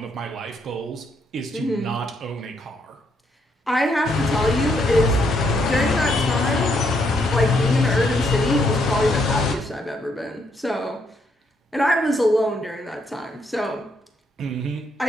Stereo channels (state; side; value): normal; both; correlation 0.74